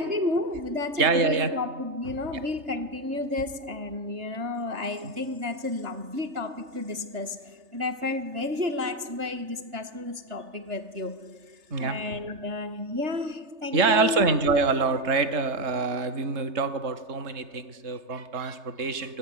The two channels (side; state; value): left; late; 3.3 ms